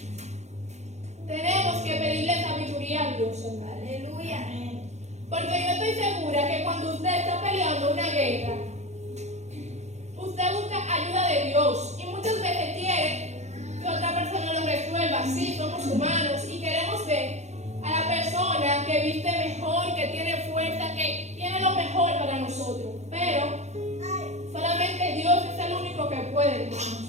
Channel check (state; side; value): late; left; 0.33 ms